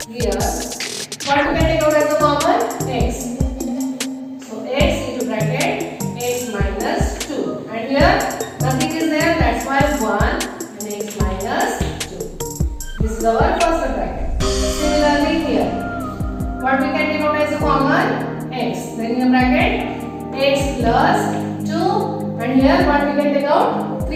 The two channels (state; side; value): identical; both; correlation 1.00